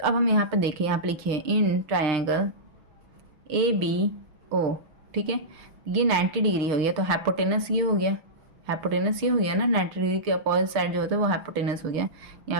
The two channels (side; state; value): left; late; 6.2 ms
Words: अब हम यहाँ पर देखिए, यहाँ पर लिखिए in triangle A B O, ठीक है। ये 90 डिग्री हो गया तो हाइपोटेनस ये हो गया, हाइपोटेनस ये हो गया ना, 90 डिग्री के अपोजिट साइड जो होता है वो हाइपोटेनस हो गया।